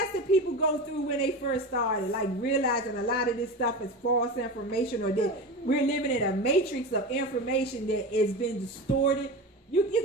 that people go through when they first started, like realizing a lot of this stuff is false information, or that we're living in a matrix of information that has been distorted.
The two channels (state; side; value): normal; both; correlation 0.26